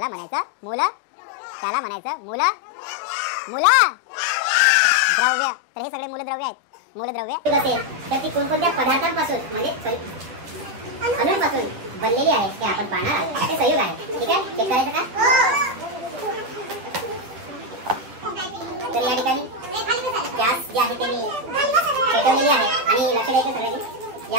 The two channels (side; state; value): left; late; 9.8 ms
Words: म्हणायचं त्याला म्हणायचं मूलद्रव्य. तर हे सगळे मूलद्रव्य आहेत. मूलद्रव्य असेल तर ती कोणकोणत्या पदार्थांपासून, म्हणजे अणूंपासून बनलेली आहे हे आपण पाहणार आहोत. ते संयुग आहे. ठीक आहे, चेक करायचं का? तर या ठिकाणी गॅस जे आहे ते मी पेटवलेली आहे, आणि लक्ष द्यायचं सगळ्यांनी,